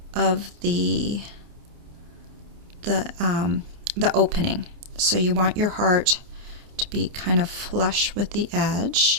of the opening. So you want your heart to be kind of flush with the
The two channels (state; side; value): late; left; 28 ms